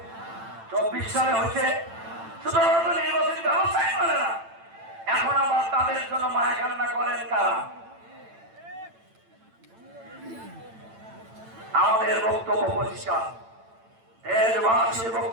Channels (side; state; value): left; late; 8.9 ms